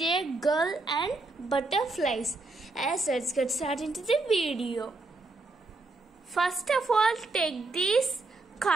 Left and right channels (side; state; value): left; quieter; 3.2 dB